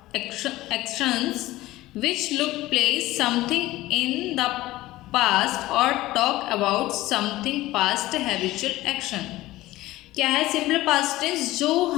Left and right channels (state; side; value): quieter; right; 17.2 dB